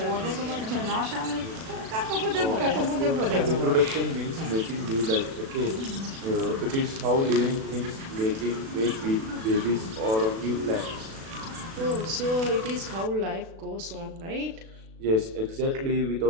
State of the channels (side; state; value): left; late; 36 ms